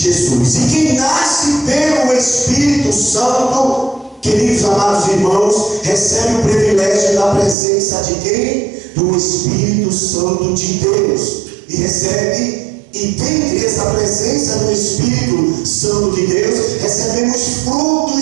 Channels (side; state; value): left; drops out; at 7.6 s